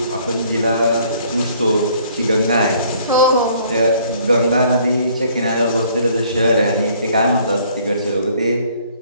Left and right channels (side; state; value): both; inverted; correlation -0.60